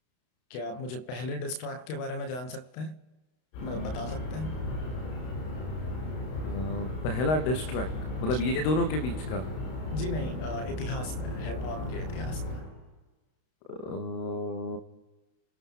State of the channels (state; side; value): late; right; 32 ms